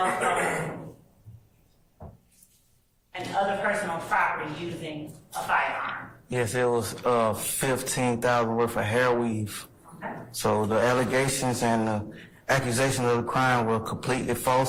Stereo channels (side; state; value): both; identical; correlation 1.00